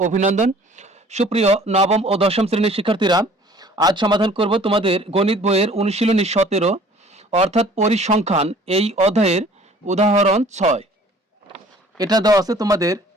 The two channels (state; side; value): normal; both; correlation 0.52